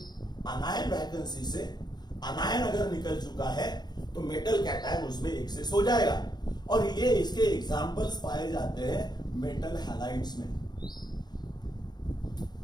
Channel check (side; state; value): right; late; 0.20 ms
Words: अनायन वैकेंसी से अनायन अगर निकल चुका है तो मेटल कैटायन उसमें एक्सेस हो जाएगा, और ये इसके एग्जांपल्स पाए जाते हैं मेटल हैलाइड्स में।